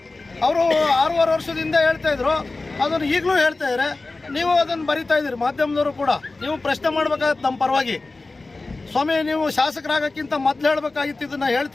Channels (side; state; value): right; quieter; 3.4 dB